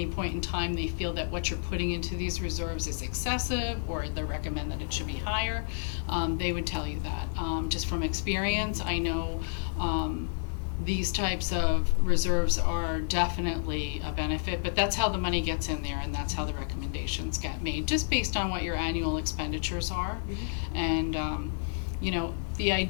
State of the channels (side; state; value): right; silent; 58 dB below the other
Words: point in time they feel that what you're putting into these reserves is excessive, or they recommend that it should be higher, they would tell you that. Just from experience, I know these types of reserves are definitely a benefit, but that's how the money gets in there, and that's how the recommendations get made, just based on what your annual expenditures are. Mm-hmm. And the